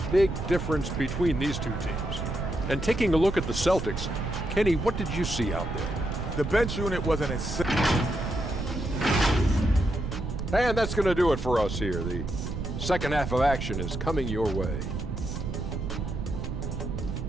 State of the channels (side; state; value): right; noise; rumble, 4 dB below the sound